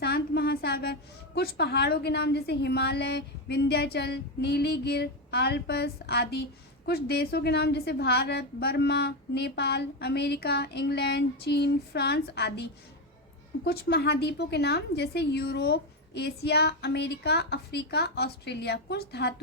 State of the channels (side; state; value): both; normal; correlation 0.10